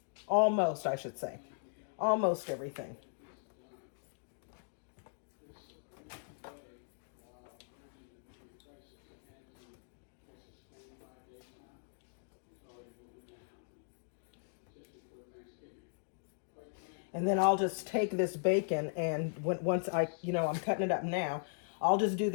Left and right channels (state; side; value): silent; right; digital silence